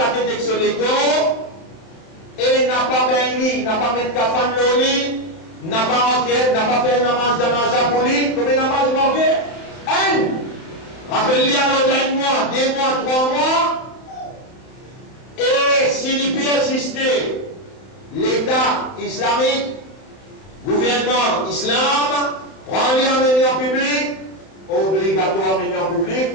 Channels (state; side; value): late; right; 31 ms